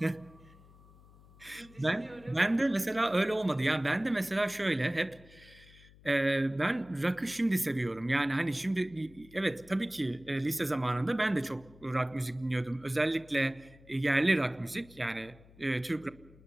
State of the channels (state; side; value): noise; left; hum, 24 dB below the sound